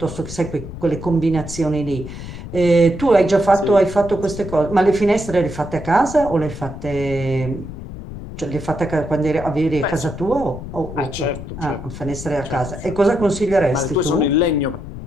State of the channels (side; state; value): left; noise; rumble, 11 dB below the sound